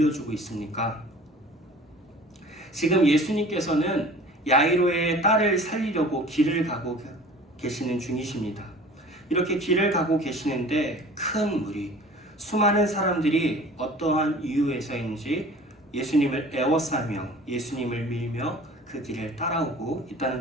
있습니까? 지금 예수님께서는 야이로의 딸을 살리려고 길을 가고 계시는 중이십니다. 이렇게 길을 가고 계시는데 큰 무리, 수많은 사람들이 어떠한 이유에서인지 예수님을 애워싸며 예수님을 밀며 그 길을 따라오고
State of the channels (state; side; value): normal; both; correlation 0.45